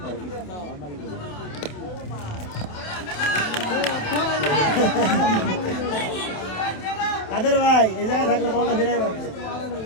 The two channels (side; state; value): right; late; 27 ms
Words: কাদের ভাই এই জায়গায় থাকলে বলটা ফিরাই পারছে।